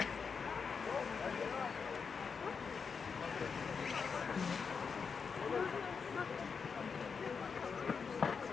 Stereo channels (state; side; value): quieter; right; 5.7 dB